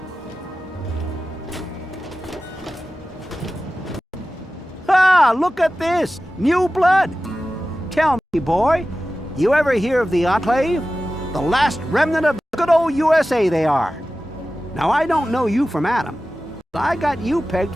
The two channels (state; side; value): normal; both; correlation 0.95